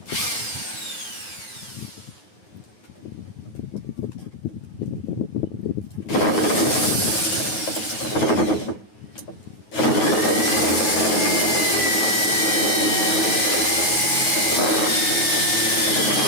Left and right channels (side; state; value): right; late; 9.4 ms